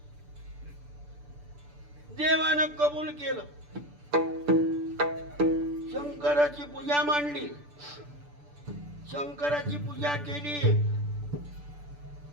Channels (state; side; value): late; left; 6.8 ms